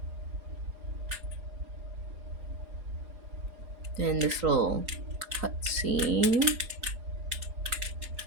Then this little cutscene.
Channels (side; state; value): left; late; 4.8 ms